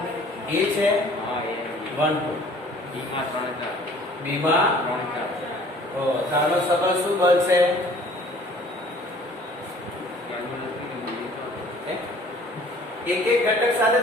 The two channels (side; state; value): both; normal; correlation 0.52